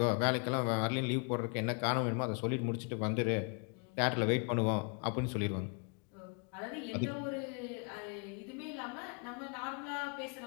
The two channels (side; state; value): right; quieter; 38.5 dB